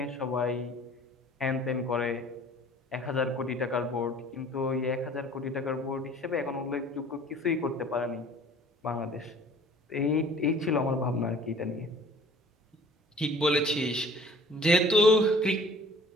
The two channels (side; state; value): both; normal; correlation 0.50